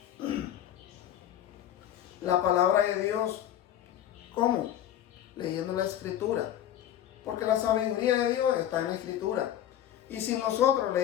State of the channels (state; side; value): quieter; right; 11.2 dB